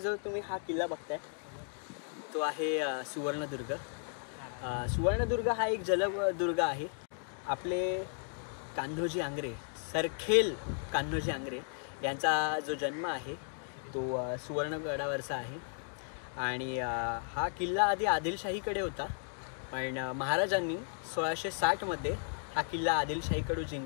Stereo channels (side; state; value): right; silent; 55 dB below the other